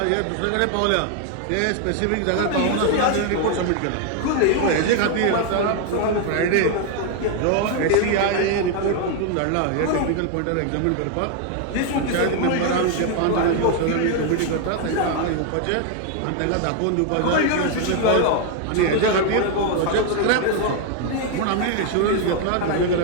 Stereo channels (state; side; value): different; both; correlation 0.00